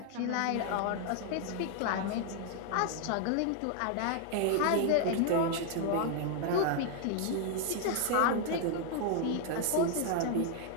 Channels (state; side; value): different; both; correlation 0.00